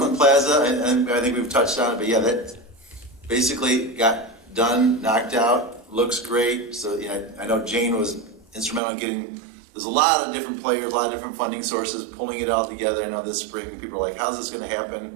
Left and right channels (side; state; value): left; drops out; at 8.8 s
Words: Plaza, and I think we've touched on it, but yeah, that basically got done, knocked out, looks great. So yeah, I know Jane was instrumental in getting, there's a lot of different players, a lot of different funding sources, pulling it all together. I know this spring people are like, how's this gonna happen?